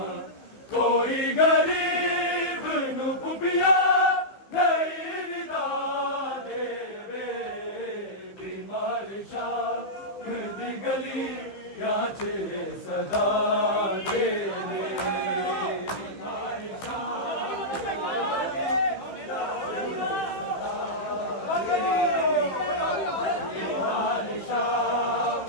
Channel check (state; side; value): late; right; 15 ms